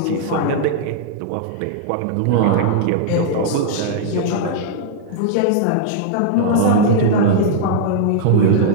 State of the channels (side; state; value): both; different; correlation -0.01